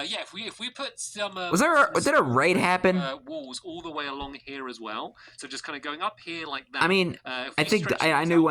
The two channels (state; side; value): identical; both; correlation 1.00